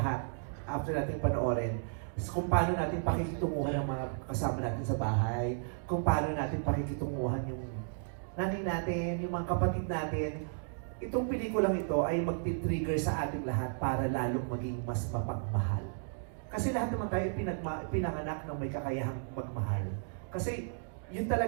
after natin panoorin. Kung paano natin pakikitunguhan ang mga kasama natin sa bahay, kung paano natin pakikitunguhan yung nanay natin, yung mga kapatid natin. Itong pelikulang ito ay magti-trigger sa ating lahat para lalong maging mas mapagmahal. Kasi lahat naman tayo pinanganak ng may kakayahang magmahal. Kasi yun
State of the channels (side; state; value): left; silent; digital silence